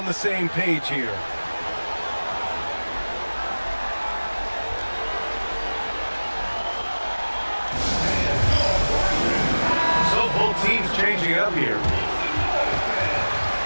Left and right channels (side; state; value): both; inverted; correlation -1.00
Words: the same page here. So both teams changing up here.